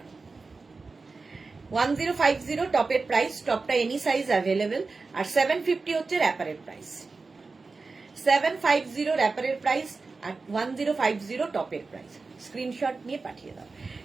1050 টপের প্রাইস, টপটা এনি সাইজ অ্যাভেলেবেল, আর 750 হচ্ছে র্যাপারের প্রাইস। 750 র্যাপারের প্রাইস আর 1050 টপের প্রাইস। স্ক্রিনশট নিয়ে পাঠিয়ে দাও।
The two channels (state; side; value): quieter; left; 4.0 dB